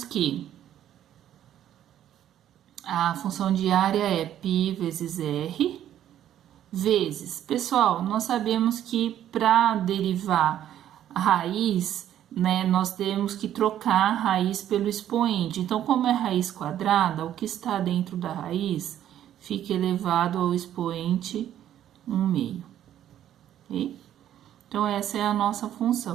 que a função de área é π vezes R, vezes... Pessoal, nós sabemos que para derivar a raiz, né, nós temos que trocar a raiz pelo expoente. Então, como é raiz quadrada, o que está dentro da raiz fica elevado ao expoente 1/2, ok? Então, essa é a nossa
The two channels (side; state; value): left; quieter; 11.2 dB